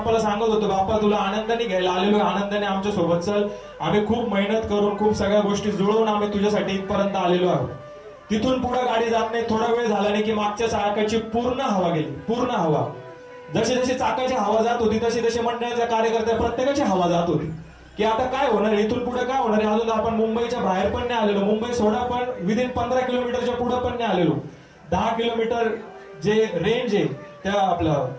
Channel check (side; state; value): both; identical; correlation 1.00